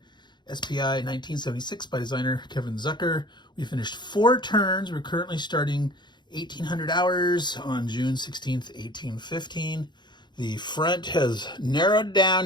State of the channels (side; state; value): right; late; 0.21 ms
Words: SPI 1976 by designer Kevin Zucker. We finished 4 turns. We're currently starting 1800 hours on June 16th, 1815. The front has narrowed down